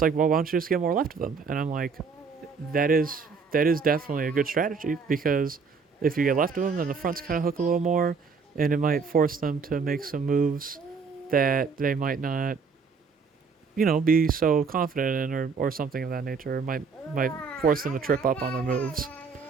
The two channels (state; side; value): quieter; left; 5.2 dB